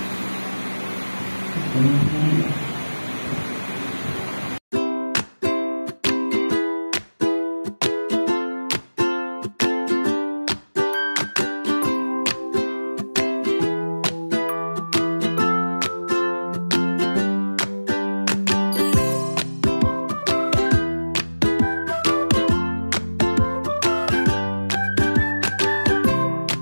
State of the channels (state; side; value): inverted; both; correlation -1.00